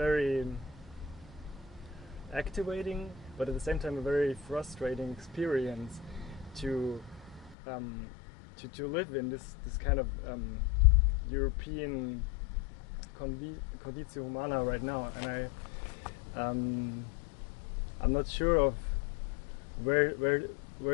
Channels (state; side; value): drops out; right; at 7.6 s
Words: activating, but at the same time a very frustrating experience to live in this kind of European conditio humana right now, and I'm not sure of where